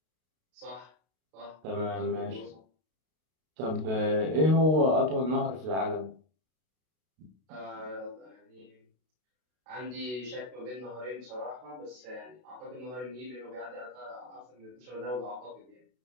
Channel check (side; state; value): left; late; 32 ms